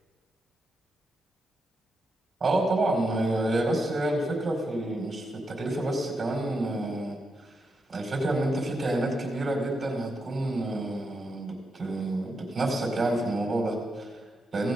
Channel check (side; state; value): both; normal; correlation 0.84